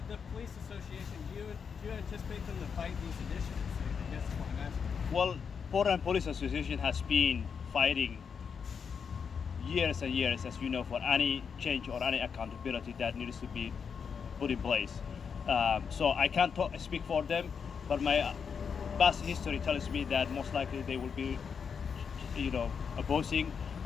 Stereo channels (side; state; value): right; quieter; 6.4 dB